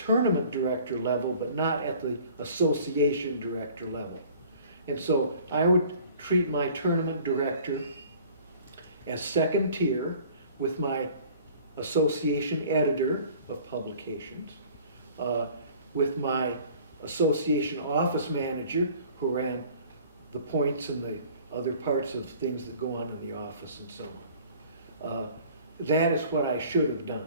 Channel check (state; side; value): inverted; both; correlation -0.50